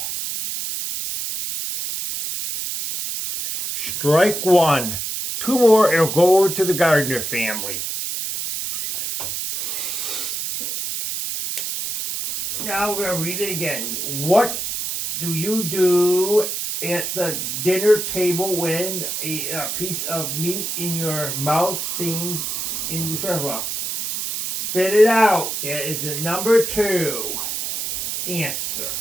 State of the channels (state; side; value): noise; right; hiss, 3 dB below the sound